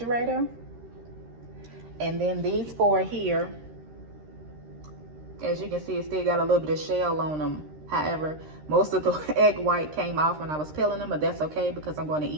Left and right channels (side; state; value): left; late; 13 ms